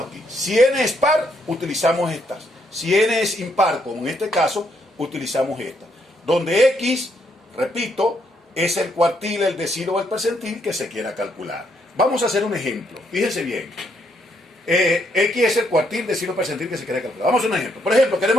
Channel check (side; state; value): both; normal; correlation 0.74